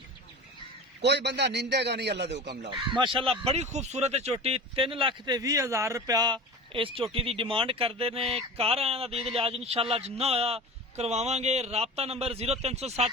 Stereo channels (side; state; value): both; normal; correlation 0.33